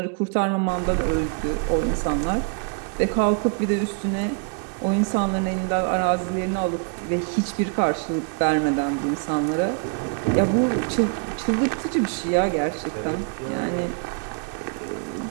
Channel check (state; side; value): quieter; left; 38.8 dB